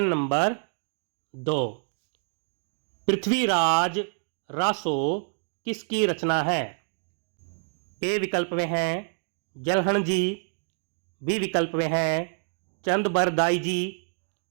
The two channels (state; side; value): silent; left; 60 dB below the other